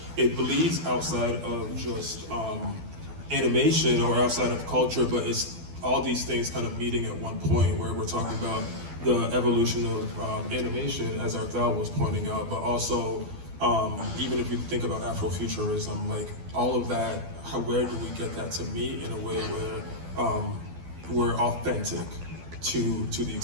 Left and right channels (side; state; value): left; late; 12 ms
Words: it bleeds outside of just animation or outside of culture, but it's all these things kind of meeting at one point where we're talking about the evolution of animation, as Arthel was pointing out, but also even if you think about Afrofuturism, like all of that, where do we get that to meet in a way where we're authentic to the